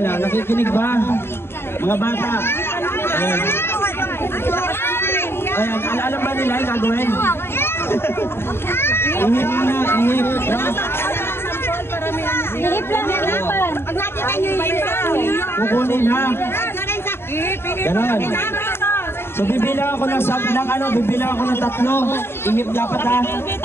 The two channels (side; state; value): right; late; 0.11 ms